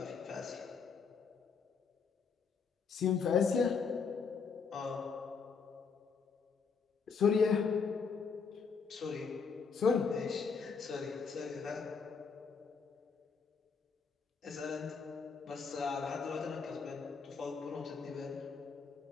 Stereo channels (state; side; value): quieter; right; 5.5 dB